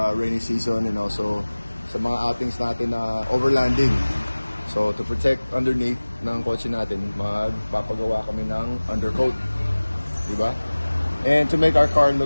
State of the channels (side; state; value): both; inverted; correlation -1.00